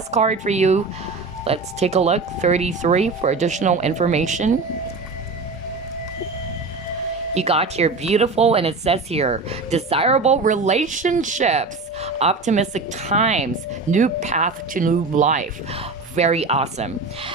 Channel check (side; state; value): left; quieter; 3.9 dB